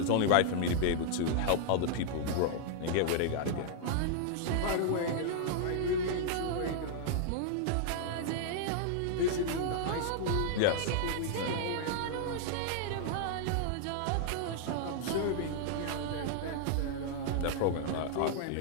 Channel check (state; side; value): different; both; correlation -0.01